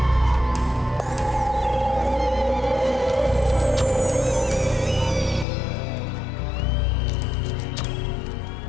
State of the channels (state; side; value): drops out; right; at 5.5 s